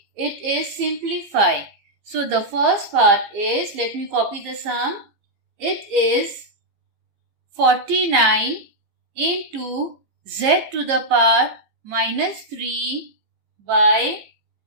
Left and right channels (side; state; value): left; late; 15 ms